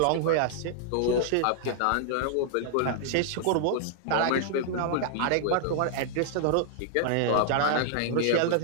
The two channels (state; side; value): different; both; correlation -0.01